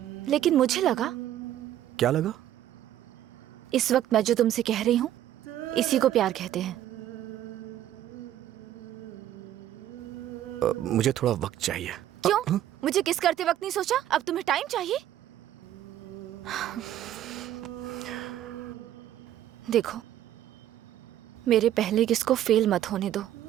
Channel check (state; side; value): quieter; left; 12.0 dB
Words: लेकिन मुझे लगा। क्या लगा? इस वक्त मैं जो तुमसे कह रही हूँ इसी को प्यार कहते हैं। मुझे थोड़ा वक्त चाहिए। क्यों? मुझे किस करते वक्त नहीं सोचा? अब तुम्हें टाइम चाहिए? देखो, मेरे पहले किस को फेल मत होने दो